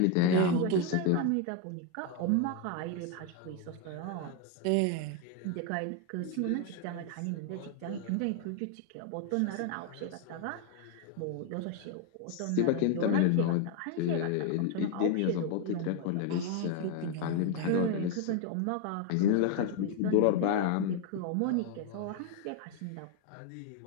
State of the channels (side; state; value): both; different; correlation 0.01